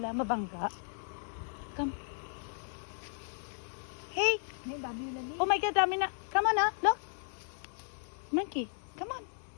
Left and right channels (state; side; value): silent; right; digital silence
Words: mabangga. Come. Hey! May dami na ni. Oh my God, dami na. Come on, look. Monkey, come on.